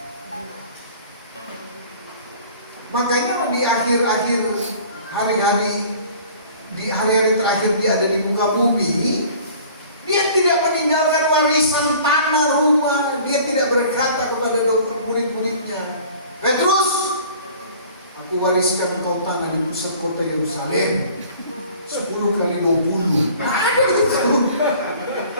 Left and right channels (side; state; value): both; inverted; correlation -0.48